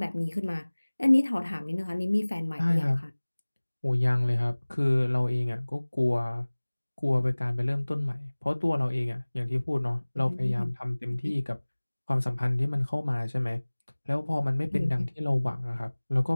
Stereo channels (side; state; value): both; inverted; correlation -1.00